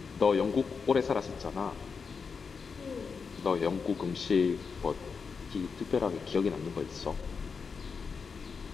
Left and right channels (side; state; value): right; quieter; 5.4 dB